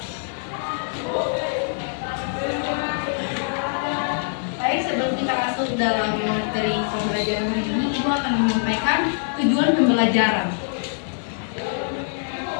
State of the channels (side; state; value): right; silent; digital silence